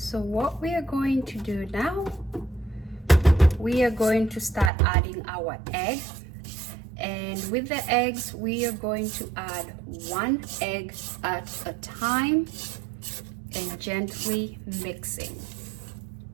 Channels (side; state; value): left; drops out; at 4.7 s